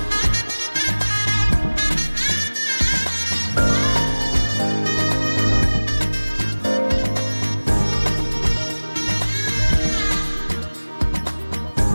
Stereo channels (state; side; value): inverted; both; correlation -1.00